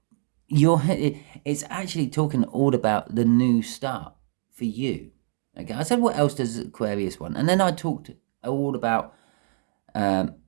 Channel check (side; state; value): left; silent; digital silence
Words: it's actually talking all about the new start for you. Okay, I said what else does Aquarius want, and then I talked all about the